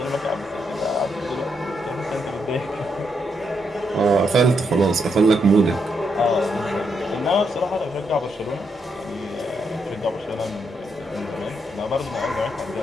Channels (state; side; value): normal; both; correlation 0.79